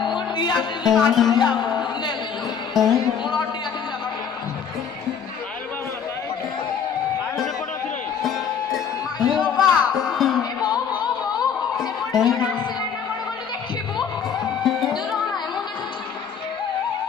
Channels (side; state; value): right; quieter; 7.2 dB